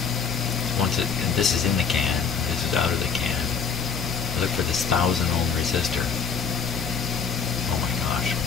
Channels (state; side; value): quieter; right; 6.3 dB